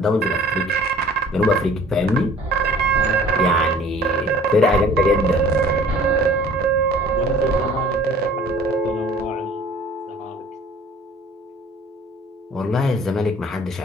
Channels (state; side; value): normal; both; correlation 0.50